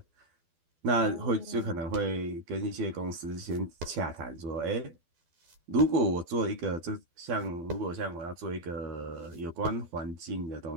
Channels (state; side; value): late; left; 12 ms